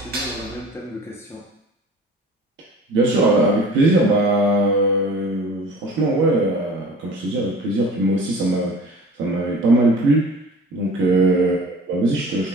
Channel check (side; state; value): both; normal; correlation 0.43